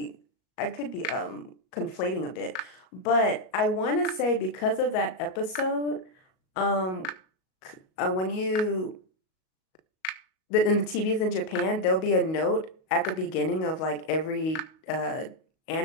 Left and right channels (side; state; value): right; late; 38 ms